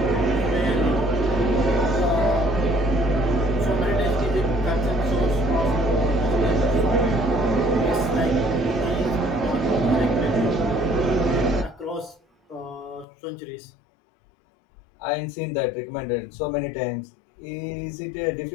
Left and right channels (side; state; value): right; drops out; at 13.1 s